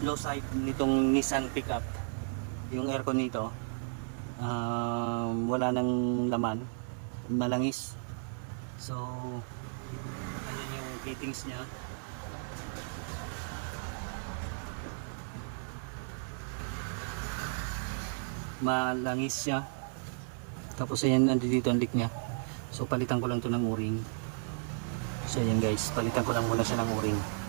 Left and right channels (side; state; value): left; silent; 55 dB below the other